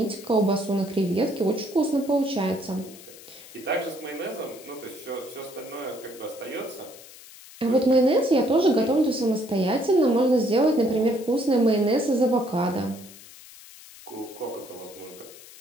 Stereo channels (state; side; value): noise; left; hiss, 19 dB below the sound